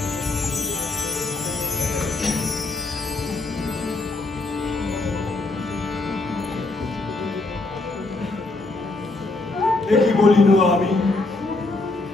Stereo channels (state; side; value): quieter; right; 3.2 dB